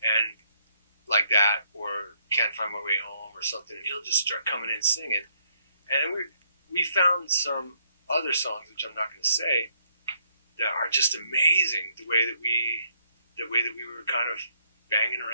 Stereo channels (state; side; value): inverted; both; correlation -0.71